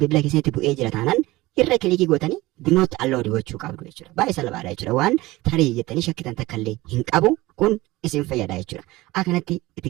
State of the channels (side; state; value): left; quieter; 19.4 dB